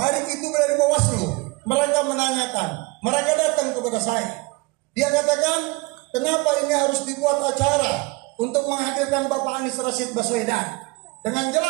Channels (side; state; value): left; quieter; 25.6 dB